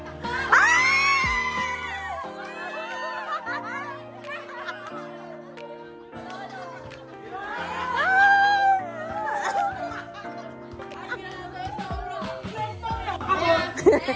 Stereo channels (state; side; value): identical; both; correlation 1.00